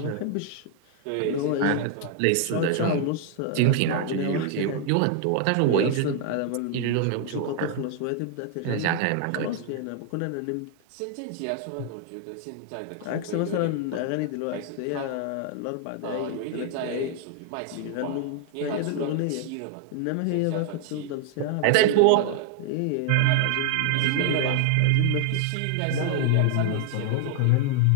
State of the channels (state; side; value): different; both; correlation 0.00